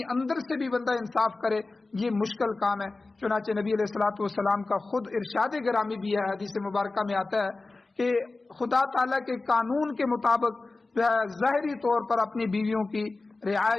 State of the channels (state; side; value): quieter; right; 3.4 dB